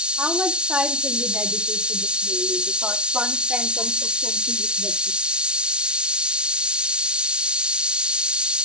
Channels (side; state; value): left; late; 0.056 ms